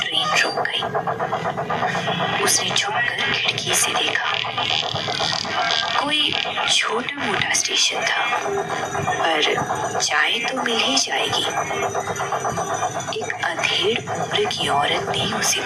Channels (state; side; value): identical; both; correlation 1.00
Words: ट्रेन रुक गई। उसने झुककर खिड़की से देखा। कोई छोटा मोटा स्टेशन था, पर चाय तो मिल ही जाएगी। एक अधेड़ उम्र की औरत ने उसे